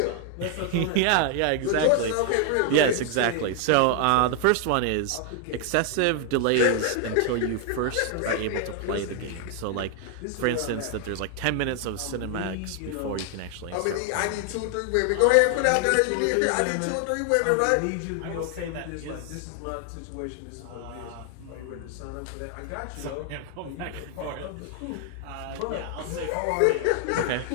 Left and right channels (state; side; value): different; both; correlation 0.00